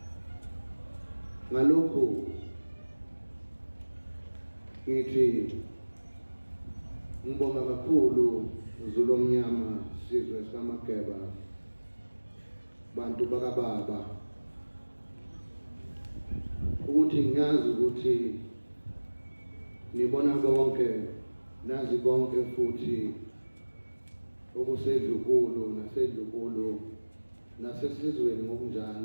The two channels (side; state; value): both; inverted; correlation -1.00